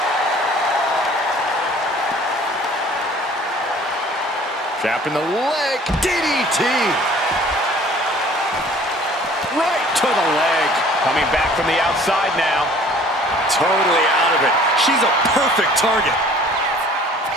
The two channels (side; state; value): both; normal; correlation 0.51